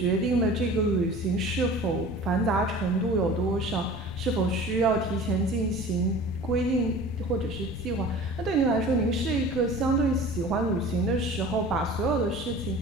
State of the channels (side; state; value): both; normal; correlation 0.41